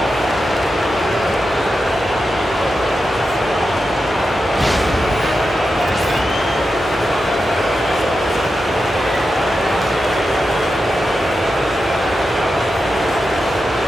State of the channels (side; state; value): both; normal; correlation 0.89